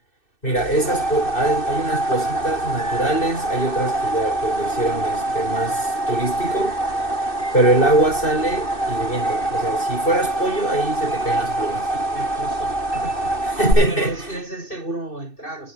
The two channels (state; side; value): late; right; 2.6 ms